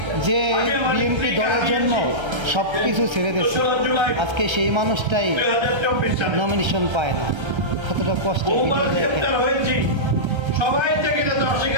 যে বিএনপি দলের জন্য সব কিছু ছেড়ে দিচ্ছে, আজকে সেই মানুষটাই নমিনেশন পায় না। কতটা কষ্ট ভিডিও দেখেন। সবাই থেকে যাতে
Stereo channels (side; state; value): left; late; 1.3 ms